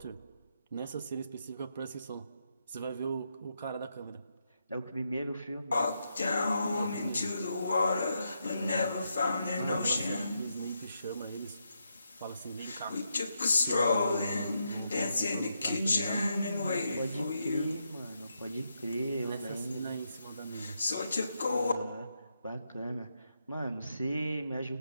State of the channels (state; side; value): inverted; both; correlation -0.82